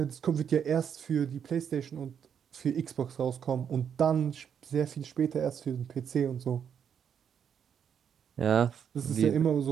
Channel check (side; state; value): left; quieter; 8.0 dB